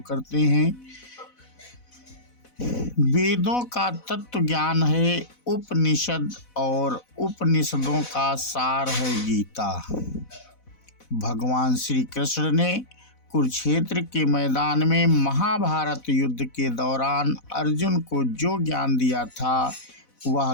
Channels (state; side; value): late; right; 4.0 ms